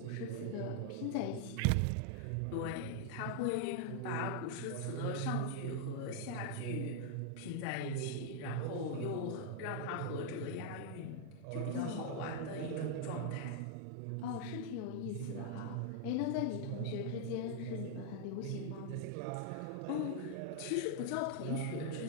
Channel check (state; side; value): different; both; correlation 0.00